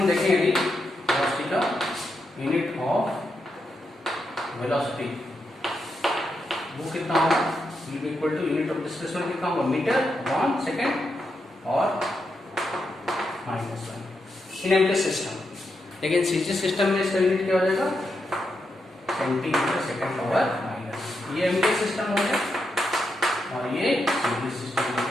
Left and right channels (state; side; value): normal; both; correlation 0.84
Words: देखेंगे अभी वेलोसिटी का, यूनिट ऑफ वेलोसिटी वो कितना होगा, will be equal to unit of displacement कितना होगा, मीटर अपॉन सेकेंड और -1 इन एमटी सिस्टम। लेकिन सीजी सिस्टम में इसका यूनिट क्या हो जाएगा, सेंटीमीटर सेकेंड पावर माइनस। ये एमटी सिस्टम हो गया और ये सीजी सिस्टम,